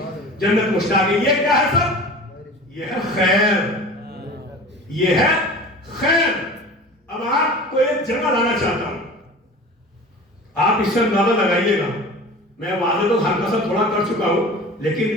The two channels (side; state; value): both; normal; correlation 0.38